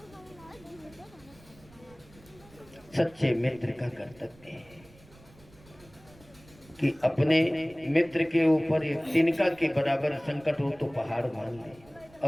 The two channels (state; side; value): noise; right; rumble, 25 dB below the sound